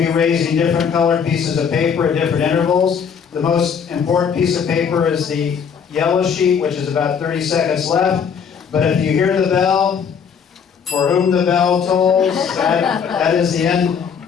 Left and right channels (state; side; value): quieter; right; 6.9 dB